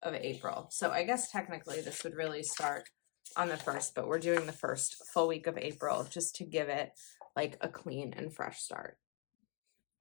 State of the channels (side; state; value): right; quieter; 36.5 dB